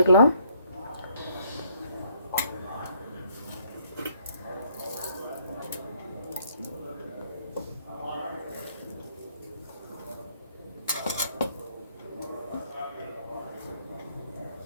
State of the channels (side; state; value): both; inverted; correlation -0.66